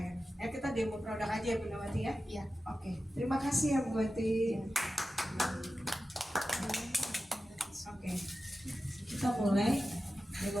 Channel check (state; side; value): normal; both; correlation 0.93